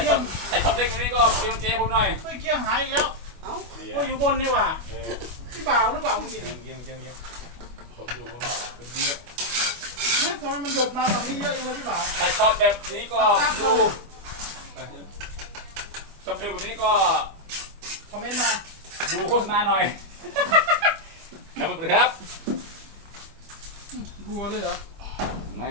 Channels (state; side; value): late; left; 25 ms